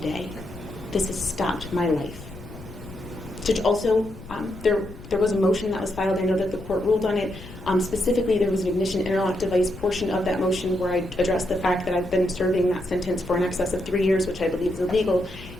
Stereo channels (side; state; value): left; noise; rumble, 16 dB below the sound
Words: This has stopped my life. Judge, also, there was a motion that was filed. I know that the court ruled on it. Specifically, there was an ignition interlock device portion of that motion where I addressed the fact that I've been serving that sentence for in excess of 3 years, which I believe is illegal.